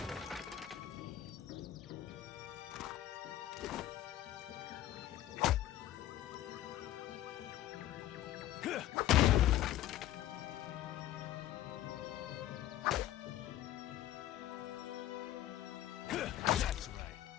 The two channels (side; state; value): right; quieter; 13.1 dB